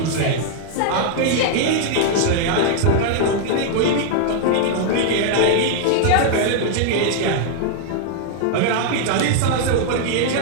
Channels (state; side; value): different; both; correlation -0.01